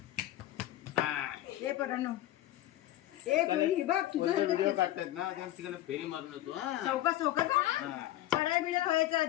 हे परानो ए पुरी बघ तुझं व्हिडिओ काढतात ना त्या ठिकाणी फेरी मारून येतो चौका चौका पडाय बिडाय व्हायचं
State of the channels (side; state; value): right; quieter; 14.5 dB